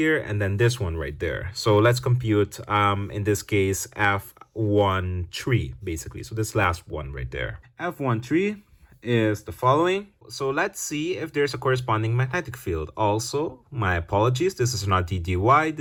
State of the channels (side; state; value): both; identical; correlation 1.00